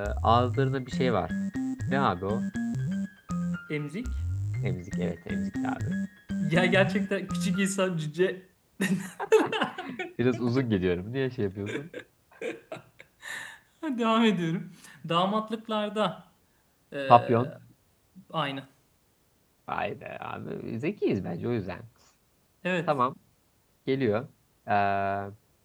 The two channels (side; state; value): both; identical; correlation 1.00